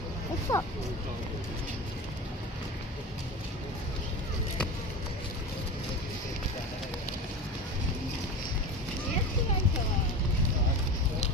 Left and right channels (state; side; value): normal; both; correlation 0.29